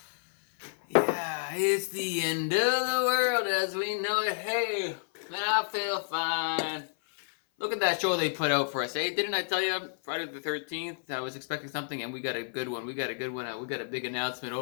Yeah, it's the end of the world as we know it. Hey, man, I feel fine. Look at that show they put out for us. Hey, didn't I tell you Friday the 13th? I was expecting something and we got a good one. We got a good one out. We got a big announcement.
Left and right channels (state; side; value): silent; right; 58 dB below the other